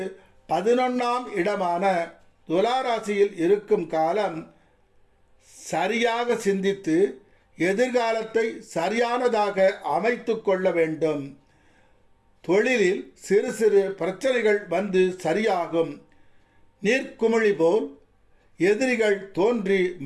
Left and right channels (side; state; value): both; identical; correlation 1.00